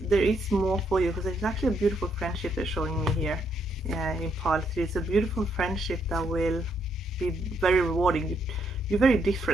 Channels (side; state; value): both; normal; correlation 0.75